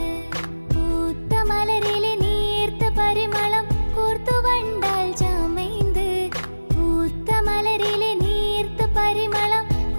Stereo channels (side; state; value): both; inverted; correlation -1.00